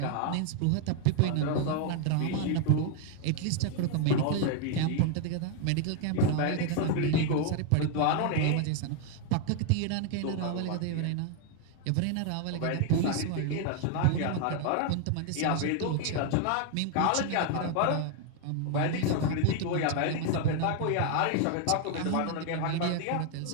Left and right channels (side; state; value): both; different; correlation 0.01